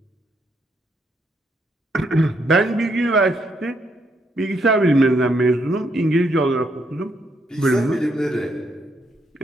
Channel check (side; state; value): both; normal; correlation 0.75